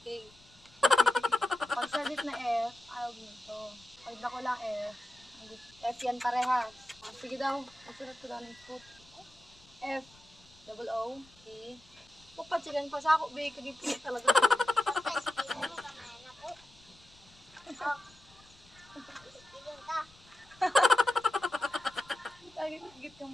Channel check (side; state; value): left; noise; rumble, 26 dB below the sound